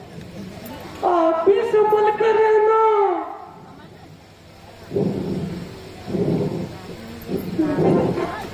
आप भी संभल कर रहना।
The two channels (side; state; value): both; identical; correlation 1.00